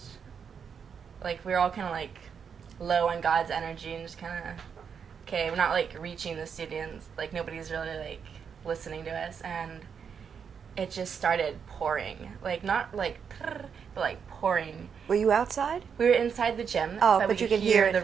we were all kind of, low on God's energy, and just kind of, okay, we're not, reaching the students, nobody's really, listening to us, and it just started pouring, not, but, pouring. Were you outside? We were inside the gym, but we you could could hear the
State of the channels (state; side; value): quieter; left; 6.8 dB